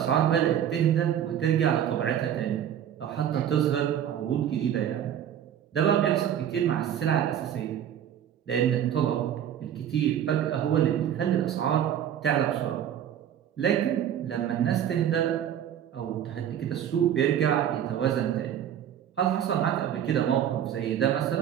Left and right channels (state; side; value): quieter; left; 9.9 dB